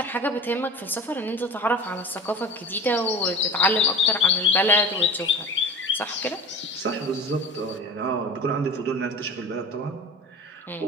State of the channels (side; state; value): both; normal; correlation 0.36